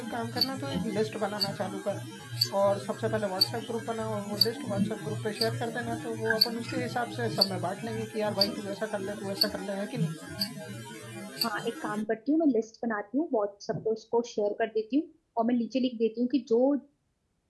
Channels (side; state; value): both; identical; correlation 1.00